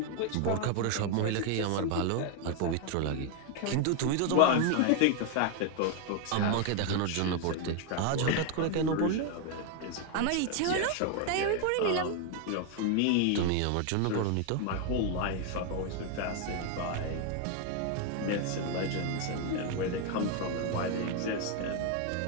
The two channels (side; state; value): both; different; correlation 0.01